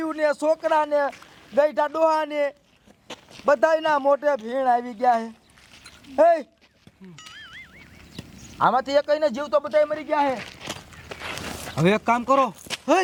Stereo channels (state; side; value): identical; both; correlation 1.00